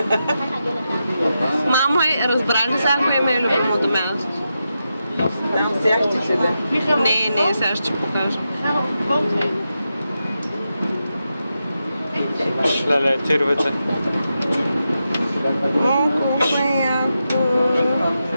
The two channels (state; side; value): inverted; both; correlation -0.88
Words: Мамо, разбрали сега кое ми е любимото място? Там сега ще ти да. Не, сега ще покажа. Леле, тировете. Колко е яко.